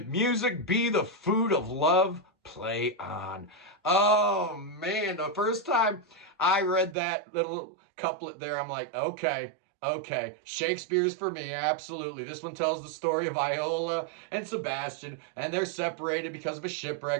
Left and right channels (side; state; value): left; drops out; at 7.0 s